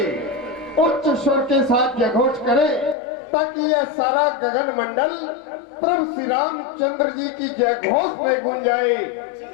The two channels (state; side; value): drops out; right; at 3.0 s